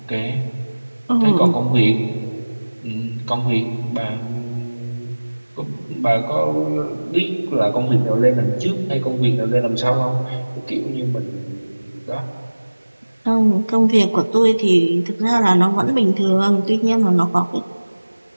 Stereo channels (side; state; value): both; inverted; correlation -1.00